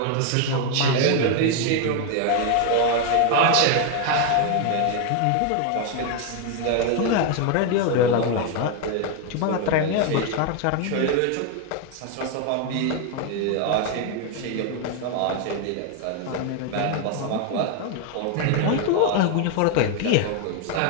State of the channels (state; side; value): different; both; correlation 0.01